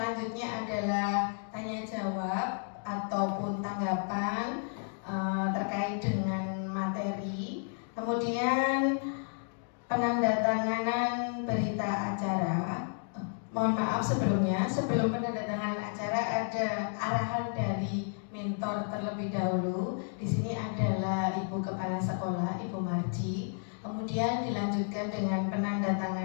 adalah tanya jawab ataupun tanggapan terkait dengan materi, kemudian penandatanganan berita acara. Mohon maaf sebelumnya, sebelum penandatanganan acara ada arahan dari mentor terlebih dahulu. Di sini adalah Ibu Kepala Sekolah, Ibu Marji. Kemudian dilanjutkan dengan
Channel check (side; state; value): right; silent; 56 dB below the other